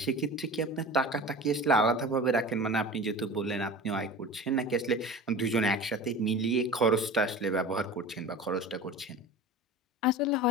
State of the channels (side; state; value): both; normal; correlation 0.35